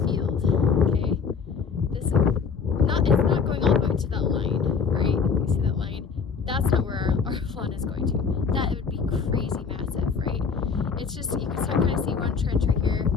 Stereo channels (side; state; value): right; quieter; 5.7 dB